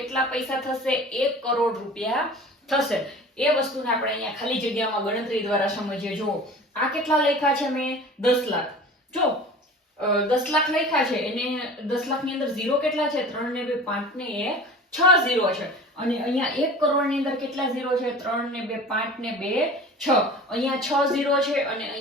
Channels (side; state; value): both; normal; correlation 0.39